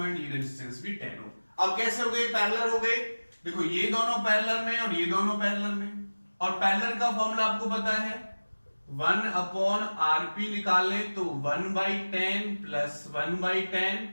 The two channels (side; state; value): both; inverted; correlation -1.00